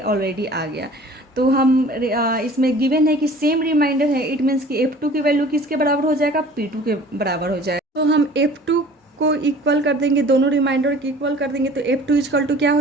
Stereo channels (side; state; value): both; normal; correlation 0.47